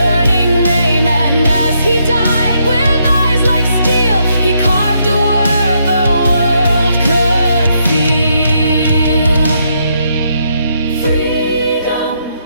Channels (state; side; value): inverted; both; correlation -0.76